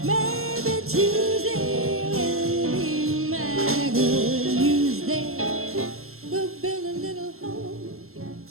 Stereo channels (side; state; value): left; late; 0.62 ms